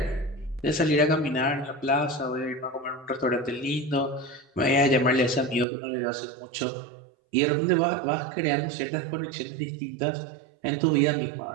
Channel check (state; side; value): drops out; left; at 5.7 s